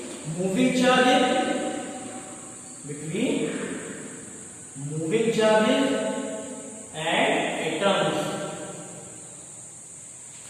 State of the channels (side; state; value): both; identical; correlation 1.00